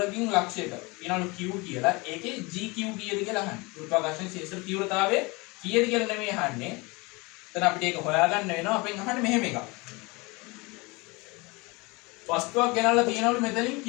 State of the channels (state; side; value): quieter; right; 25.9 dB